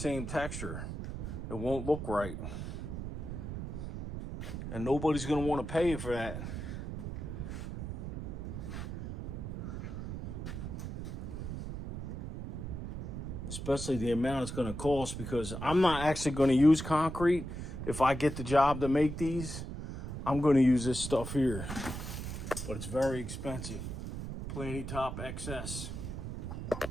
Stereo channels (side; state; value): right; noise; rumble, 6 dB below the sound